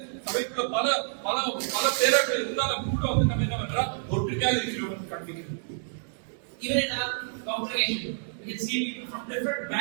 சபைக்குள்ள பல பல பல பேர்கள் இருந்தாலும் கூட நம்ம என்ன பண்றா ஒற்றுமையாக இருக்கிறோம் காண்பிக்கிறது. Even in our congregation, we can see people from different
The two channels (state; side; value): silent; left; digital silence